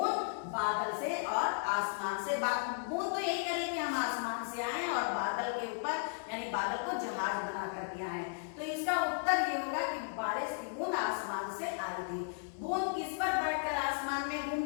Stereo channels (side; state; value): right; silent; digital silence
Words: बादल से और आसमान से। बूंद तो यही करें कि हम आसमान से आए और बादल के ऊपर, यानी बादल को जहाज बना करके आए। तो इसका उत्तर ये होगा कि बारिश की बूंद आसमान से आई थी। बूंद किस पर बैठकर आसमान में